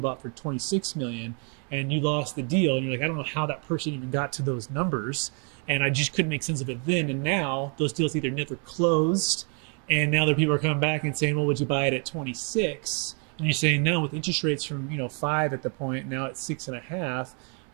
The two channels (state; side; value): quieter; left; 39.3 dB